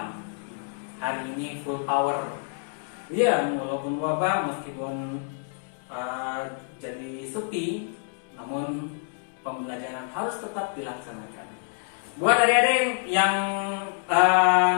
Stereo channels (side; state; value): right; silent; 60 dB below the other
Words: Hari ini full power. Ya, walaupun wabah, meskipun jadi sepi, namun pembelajaran harus tetap dilaksanakan. Buat adik-adik yang